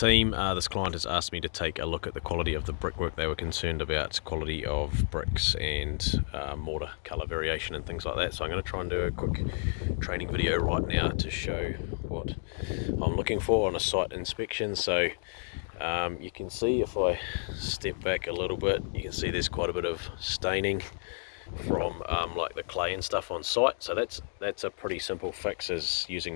this client has asked me to take a look at the quality of the brickwork. They were concerned about quality of bricks and mortar colour variation and things like that. So I'm going to try and do a quick training video right now to show what I'm looking for on a site inspection. So you can see, if I step back a little bit, you can see there's quite a bit of staining from like the clay and stuff on site. So that's a pretty simple fix, is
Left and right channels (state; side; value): silent; right; 57 dB below the other